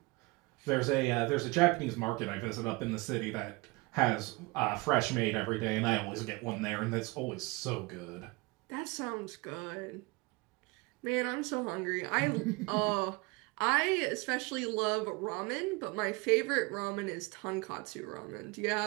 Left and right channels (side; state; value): left; quieter; 25.3 dB